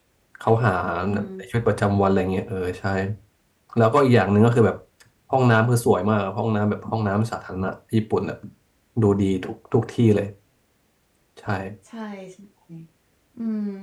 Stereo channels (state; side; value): identical; both; correlation 1.00